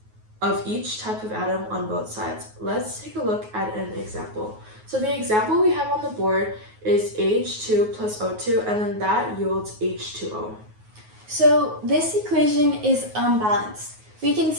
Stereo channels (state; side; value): late; left; 9.4 ms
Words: of each type of atom on both sides. Let's take a look at an example. So the example we have on the board is H2 plus O2, and then that yields H2O. So this equation is unbalanced. We can